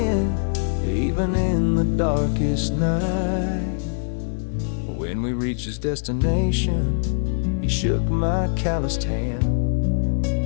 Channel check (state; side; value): silent; right; 64 dB below the other